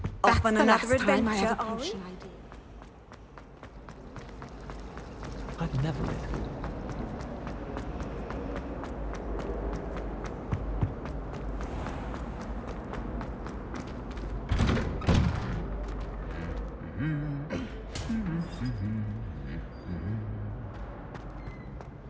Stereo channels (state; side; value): identical; both; correlation 1.00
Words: Off on another Last time I adventure, had a are we? potion idea. I've never been.